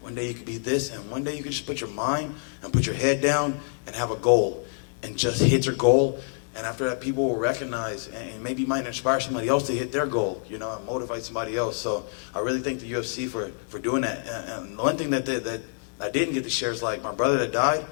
One day you could be this, and one day you could just put your mind and put your head down and have a goal and just hit your goal. And after that, people will recognize and maybe might inspire somebody else to hit their goal, you know, and motivate somebody else. So I really thank the UFC for doing that. And the one thing that I didn't get to share is, like, my brother that died,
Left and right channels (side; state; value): right; silent; digital silence